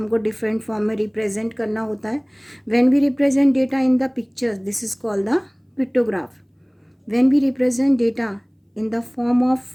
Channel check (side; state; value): both; identical; correlation 1.00